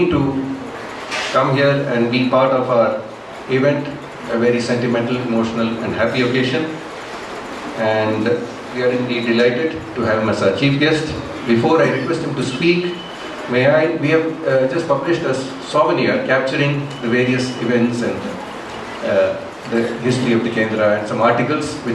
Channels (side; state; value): both; identical; correlation 1.00